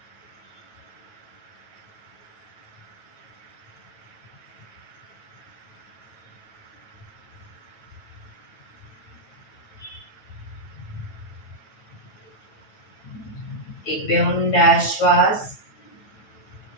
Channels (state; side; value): late; right; 9.1 ms